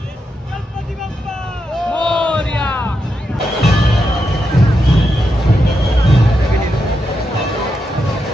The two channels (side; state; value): both; normal; correlation 0.85